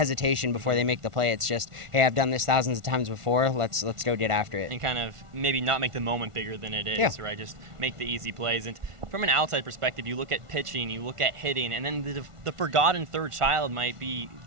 before they make the play. It's just, hey, I've done this thousands of times before, let's go get after it. And kind of maybe not make the moment bigger than it is, right? Just make the easy plays. And from an outside perspective, you look at pitching, you look at hitting, and then the forgotten third child might be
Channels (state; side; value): late; left; 1.4 ms